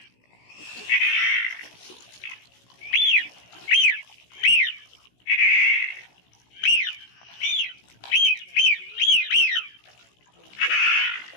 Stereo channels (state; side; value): late; right; 16 ms